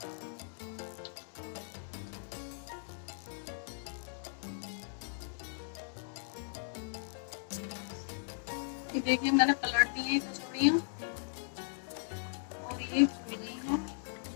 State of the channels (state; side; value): silent; right; digital silence